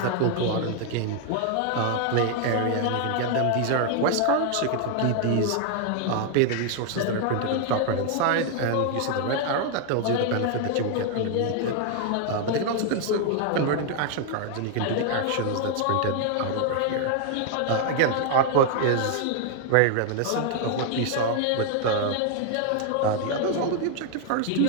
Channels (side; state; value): both; different; correlation 0.00